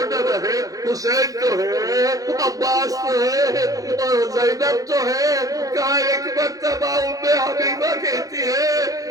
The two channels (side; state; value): left; late; 0.17 ms